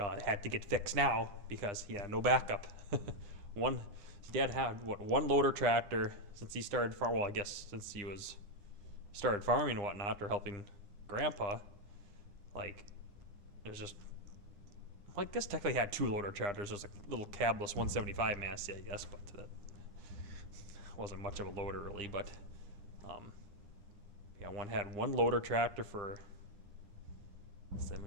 had to get fixed now because he had no backup. Dad had, 1 loader tractor since he started farming. Well, I guess since he started farming and whatnot, or helping Grandpa. Like, it was just, well, I guess technically had 2 loader tractors. There's a little cabless 175 Massey, I guess, but that wasn't much of a loader really. But one had 1 loader tractor for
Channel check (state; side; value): late; left; 9.8 ms